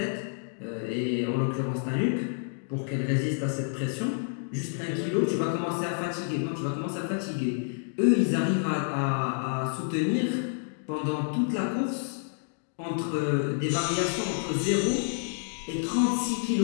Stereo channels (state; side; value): silent; right; digital silence